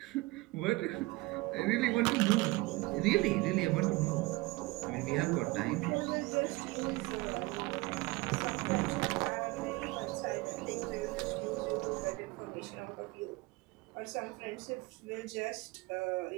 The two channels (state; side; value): quieter; left; 22.1 dB